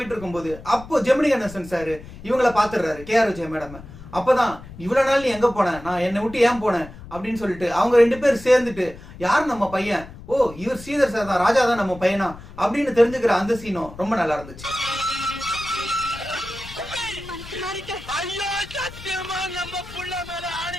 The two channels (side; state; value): left; noise; rumble, 16 dB below the sound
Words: இருக்கும்போது அப்போ ஜெமினி கணேசன் சார் இவங்களை பாத்துடுறாரு கேஆர் விஜயா மேடம். அப்பதான் இவ்வளவு நாள் நீ எங்க போன, நான் என்னை விட்டு ஏன் போனேன் அப்படின்னு சொல்லிட்டு அவங்க 2 பேர் சேர்ந்துட்டு யார் நம்ம பையன், ஓ இவர் ஸ்ரீதர் சார் தான், ராஜா தான் நம்ம பையனா அப்படின்னு தெரிஞ்சுக்கிற அந்த சீனும் ரொம்ப நல்லா இருந்துச்சு. நம்ம